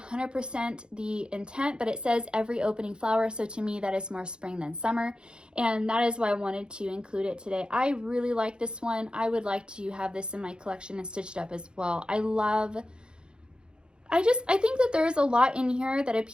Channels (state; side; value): late; left; 0.050 ms